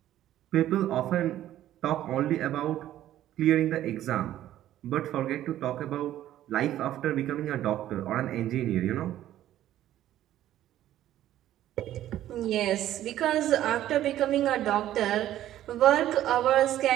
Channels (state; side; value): quieter; left; 12.8 dB